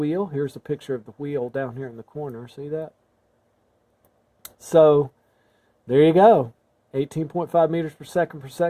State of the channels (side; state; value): both; identical; correlation 1.00